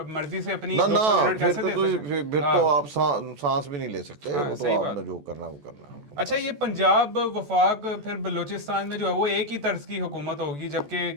मर्जी से अपनी ना 200 यूनिट कैसे दे सकते हैं? फिर तो आप सांस भी नहीं ले सकते। वो तो आपने जो करना वो करना। अच्छा, ये पंजाब, वफाक, फिर बलूचिस्तान में जो है वो एक ही तर्ज की हुकूमत होगी, जबकि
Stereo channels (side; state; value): left; late; 14 ms